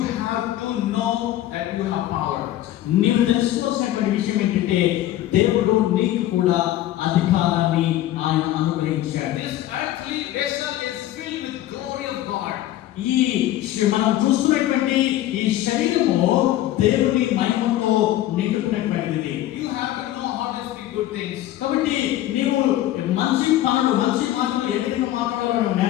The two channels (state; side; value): quieter; right; 13.8 dB